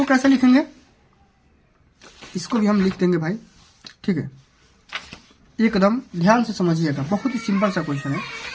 कैसे लिखेंगे, इसको भी हम लिख देंगे भाई। ठीक है, एकदम ध्यान से समझिएगा, बहुत ही सिंपल सा क्वेश्चन है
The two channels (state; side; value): identical; both; correlation 1.00